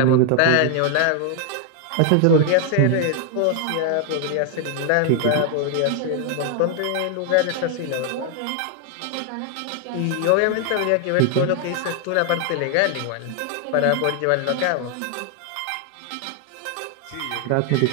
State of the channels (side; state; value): both; different; correlation 0.00